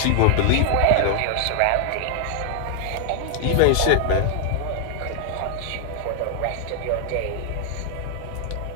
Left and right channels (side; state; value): both; different; correlation 0.00